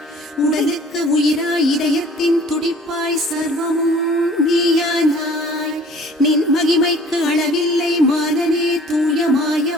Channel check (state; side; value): normal; both; correlation 0.51